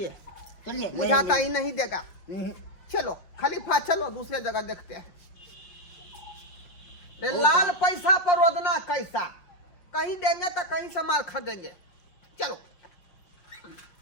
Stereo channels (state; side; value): late; right; 5.6 ms